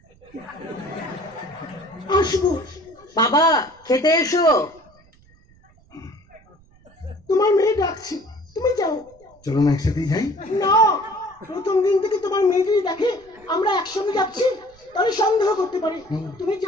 আসবো। বাবা খেতে এসো। তোমার মেয়ে ডাকছে, তুমি যাও। চলো না একসাথেই যাই। না, প্রথম দিন থেকে তোমার মেয়ে যদি দেখে আমরা একসঙ্গে যাচ্ছি তাহলে সন্দেহ করতে পারে। তুমি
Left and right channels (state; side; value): noise; right; rumble, 29 dB below the sound